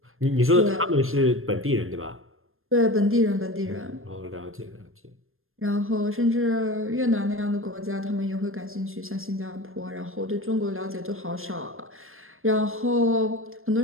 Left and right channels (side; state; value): left; late; 0.60 ms